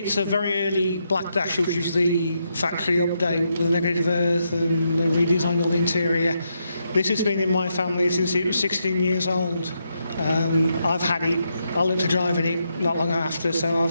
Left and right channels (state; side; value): inverted; both; correlation -0.81